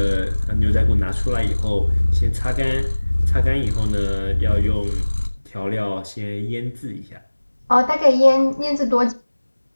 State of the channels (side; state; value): both; inverted; correlation -1.00